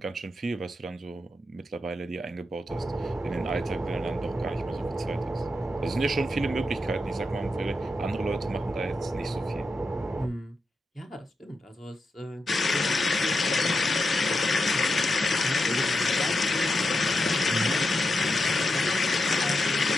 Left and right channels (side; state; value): both; normal; correlation 0.87